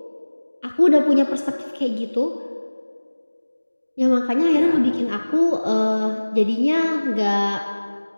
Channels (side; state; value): both; inverted; correlation -1.00